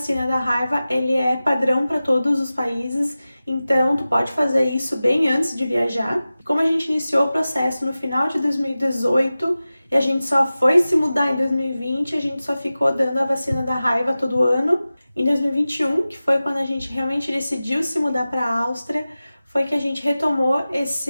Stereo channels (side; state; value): both; inverted; correlation -0.96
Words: da raiva, ele é padrão para todos os países. Então, tu pode fazer isso bem antes de viajar. Como a gente iniciou o processo no final de 2018 e a gente só foi se mudar em 2020, a gente só ficou dando a vacina da raiva todo ano. Em 2021, que foi quando a gente realmente decidiu se mudar para a Áustria, foi que a gente retomou